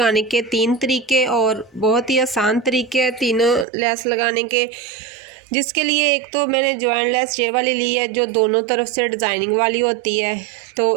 के 3 तरीके और बहुत ही आसान तरीके हैं तीनों लेस लगाने के। जिसके लिए एक तो मैंने जॉइंट लेस ये वाली ली है जो दोनों तरफ से डिज़ाइनिंग वाली होती है,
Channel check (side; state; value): left; drops out; at 3.7 s